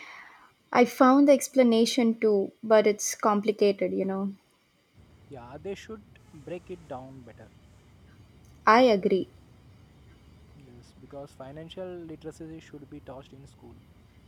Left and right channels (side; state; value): both; identical; correlation 1.00